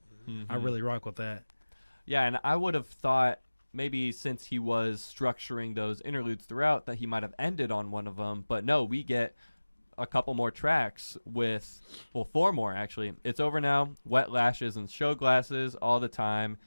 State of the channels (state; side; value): inverted; both; correlation -1.00